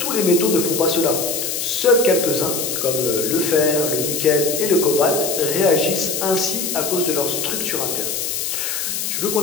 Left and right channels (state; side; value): noise; left; hiss, 2 dB below the sound